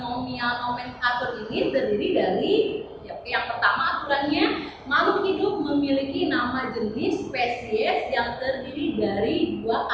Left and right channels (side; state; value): both; identical; correlation 1.00